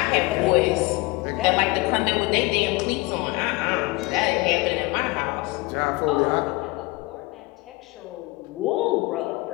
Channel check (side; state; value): right; quieter; 23.7 dB